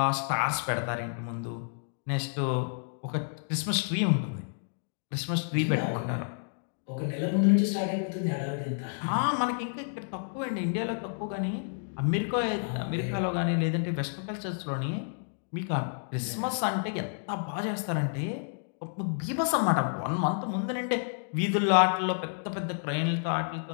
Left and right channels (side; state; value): right; silent; digital silence